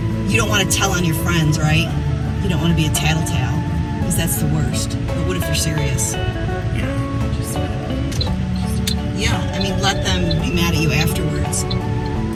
You don't want to tell on your friends, right? You don't want to be a tattletale, because that's the worst. But what if they're serious? Yeah, I mean, let them be mad at you afterwards.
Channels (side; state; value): both; identical; correlation 1.00